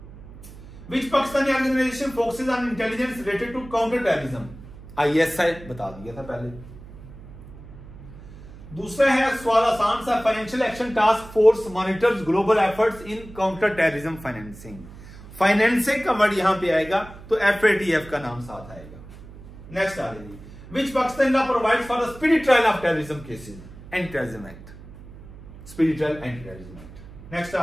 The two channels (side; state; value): right; noise; hum, 17 dB below the sound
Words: Which Pakistani organization focuses on intelligence related to counter terrorism? ISI बता दिया था पहले। दूसरा है सवाल आसान सा, financial action task force monitors global efforts in counter terrorism financing. Financing का वर्ड यहां पे आएगा तो FATF का नाम साथ आएगा। नेक्स्ट आ रही, which Pakistan law provides for the speedy trial of terrorism cases? Anti terrorism act, speedy trial anti terrorism act. Next